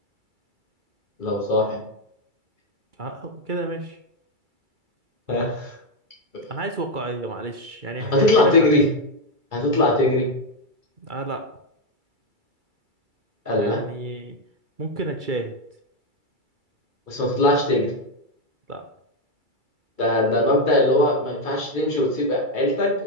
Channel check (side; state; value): left; late; 2.3 ms